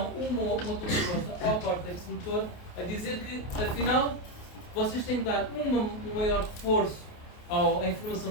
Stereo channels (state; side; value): late; right; 28 ms